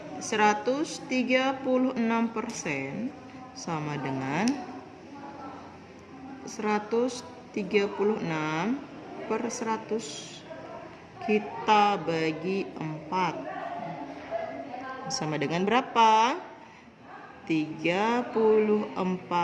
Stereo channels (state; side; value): identical; both; correlation 1.00